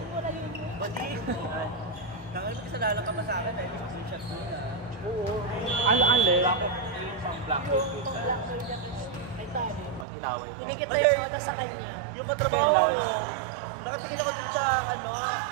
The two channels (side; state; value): left; drops out; at 10.1 s